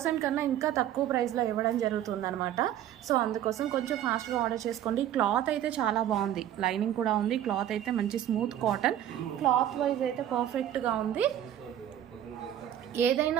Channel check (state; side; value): quieter; left; 11.3 dB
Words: కన్నా ఇంకా తక్కువ ప్రైస్లో ఇవ్వడం జరుగుతుంది అనమాట. సో అందుకోసం కొంచెం ఫాస్ట్గా ఆర్డర్ చేసుకోండి. క్లాత్ అయితే చాలా బాగుంది, లైనింగ్ కూడా ఉంది. క్లాత్ అయితే మంచి స్మూత్ కాటన్. క్లాత్ వైజ్ అయితే పర్ఫెక్ట్గా ఉంది. ఏదైనా